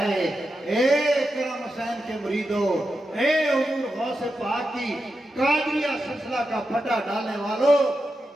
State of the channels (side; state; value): both; normal; correlation 0.89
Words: اے کرم حسین کے مریدو، اے حضور غوث پاک کی قادریہ سلسلہ کا پھٹا ڈالنے والو،